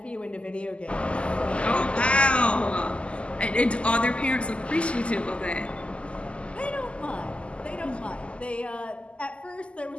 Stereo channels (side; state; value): right; late; 0.056 ms